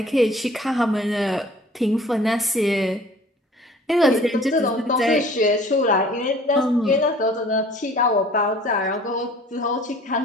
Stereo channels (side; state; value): both; normal; correlation 0.50